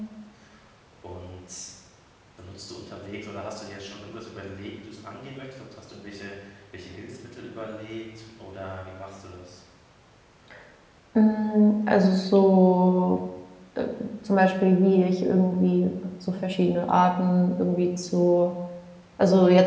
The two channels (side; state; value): both; identical; correlation 1.00